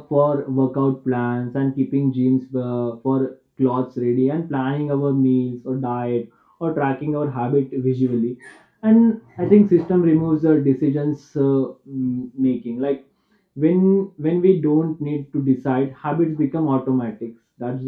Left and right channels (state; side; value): identical; both; correlation 1.00